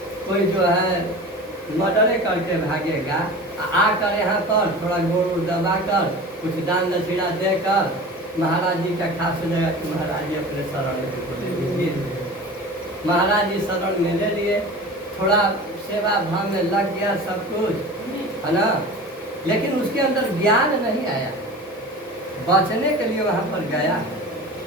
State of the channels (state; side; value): normal; both; correlation 0.36